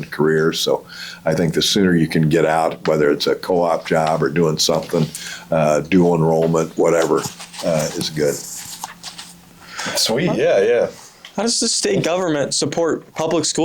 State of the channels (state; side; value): identical; both; correlation 1.00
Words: career. So I think the sooner you can get out, whether it's a co-op job or doing something, dual enrollment, whatever, is good. Sweet, yeah. How does the state government support public